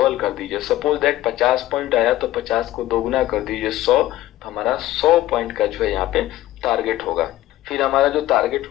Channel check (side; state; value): right; quieter; 15.2 dB